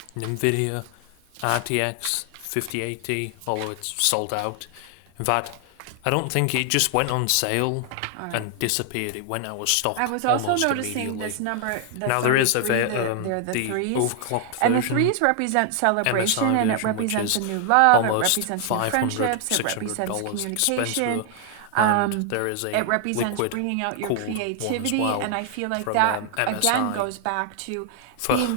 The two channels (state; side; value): different; both; correlation 0.00